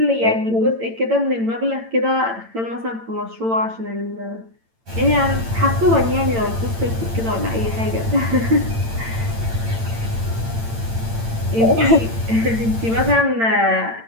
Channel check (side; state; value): left; late; 8.9 ms